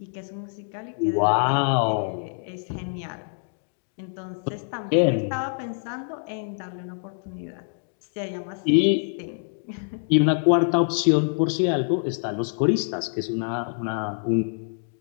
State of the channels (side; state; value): right; silent; digital silence